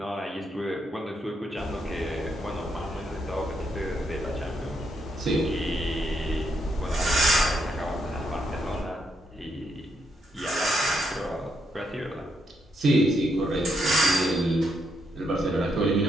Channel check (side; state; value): both; normal; correlation 0.78